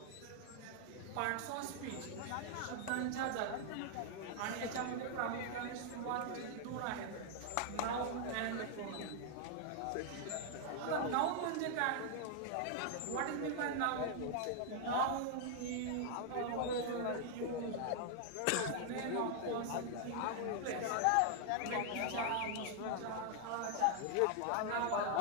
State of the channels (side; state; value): both; different; correlation 0.00